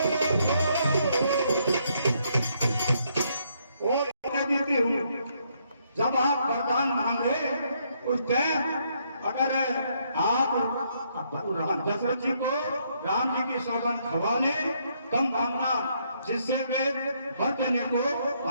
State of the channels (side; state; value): both; inverted; correlation -0.72